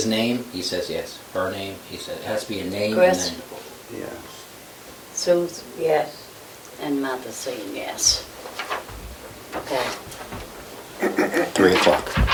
name, he says yes. Her name, he says, it has to be a name and Chris? then. Yes. Sue? Yes. And Martha saying yes. Okay. 3 o'clock.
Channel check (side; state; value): both; identical; correlation 1.00